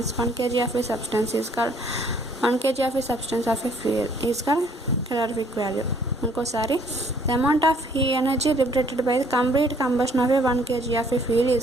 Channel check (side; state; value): both; normal; correlation 0.62